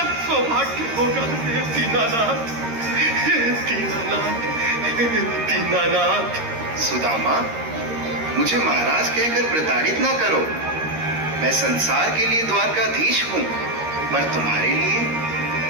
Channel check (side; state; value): left; late; 13 ms